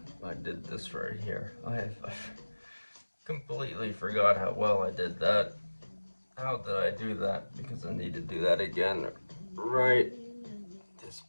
I did this right here. I completely forgot how well I did that. How did I do that? Because I need to do that again. Right this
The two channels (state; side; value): inverted; both; correlation -1.00